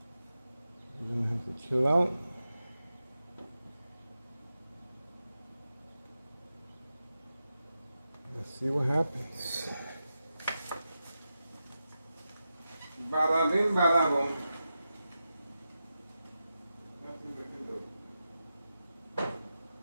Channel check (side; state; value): both; inverted; correlation -0.90